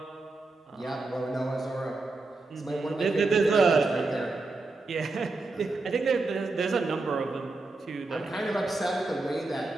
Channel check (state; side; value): quieter; left; 3.4 dB